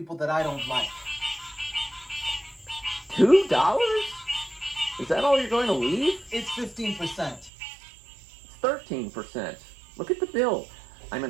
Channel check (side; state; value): left; drops out; at 7.5 s